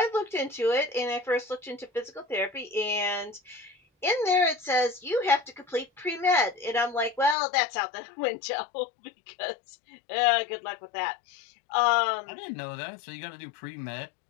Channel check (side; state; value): right; drops out; at 7.4 s